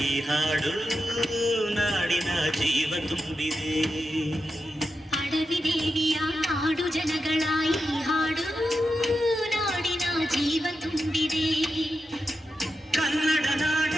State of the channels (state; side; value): normal; both; correlation 0.89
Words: ಈ ಹಾಡು ನಾಡಿನ ಜೀವ ತುಂಬಿದೆ. ಅಡವಿ ದೇವಿಯ ಹಾಡು ಜನಗಳ ಈ ಹಾಡು ನಾಡಿನ ಜೀವ ತುಂಬಿದೆ. ಕನ್ನಡ